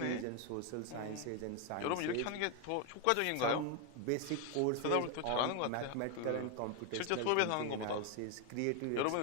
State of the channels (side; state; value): both; different; correlation 0.01